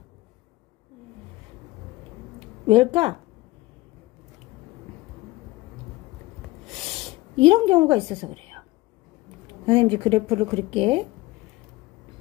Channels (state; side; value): quieter; right; 19.9 dB